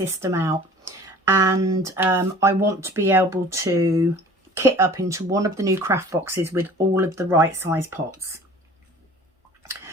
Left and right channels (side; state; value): both; normal; correlation 0.45